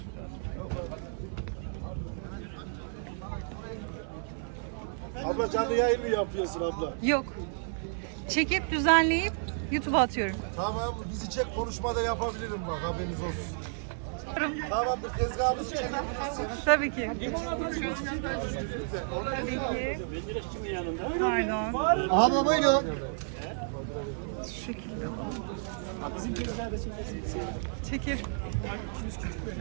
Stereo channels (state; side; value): silent; left; 57 dB below the other